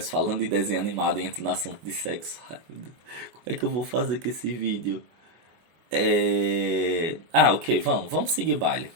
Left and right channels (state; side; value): late; left; 24 ms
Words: falando de desenho animado e entro no assunto de sexo. Ai, meu Deus. Como é que eu vou fazer com esse vídeo? Ok, vamos seguir o baile.